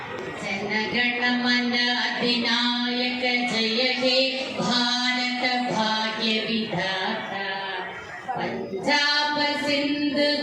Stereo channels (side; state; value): both; identical; correlation 1.00